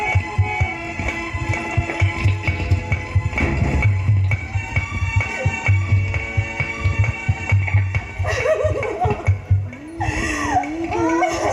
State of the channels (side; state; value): both; identical; correlation 1.00